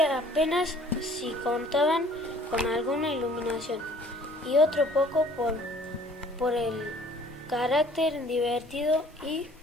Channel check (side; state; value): both; normal; correlation 0.54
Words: si contaban con alguna iluminación, y otro poco por el carácter divertido y